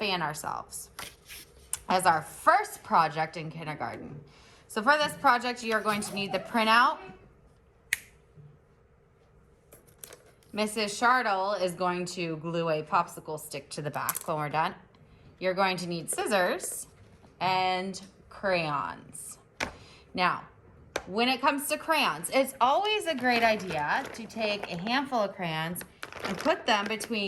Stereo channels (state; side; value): identical; both; correlation 1.00